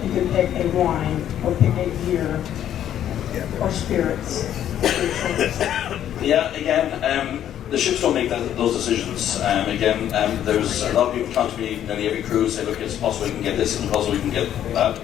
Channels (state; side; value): quieter; right; 10.7 dB